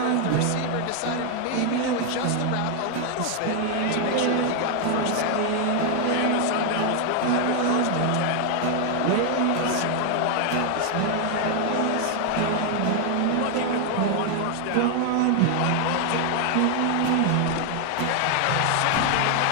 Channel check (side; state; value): both; different; correlation 0.00